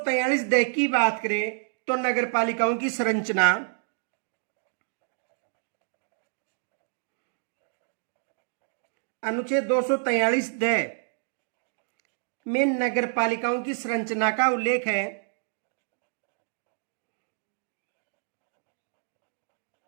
दे की बात करें तो नगर पालिकाओं की संरचना अनुच्छेद 243 दे में नगर पालिकाओं की संरचना का उल्लेख है।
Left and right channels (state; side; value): silent; left; digital silence